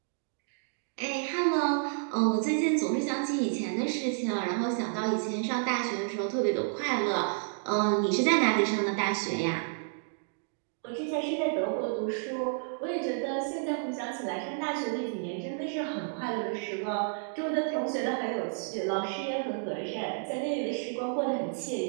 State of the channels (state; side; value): silent; left; digital silence